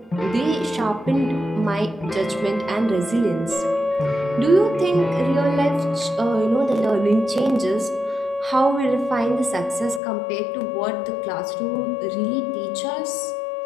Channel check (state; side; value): drops out; right; at 10.0 s